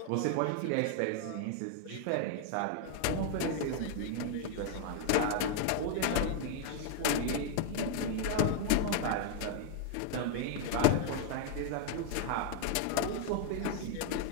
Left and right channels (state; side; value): different; both; correlation 0.00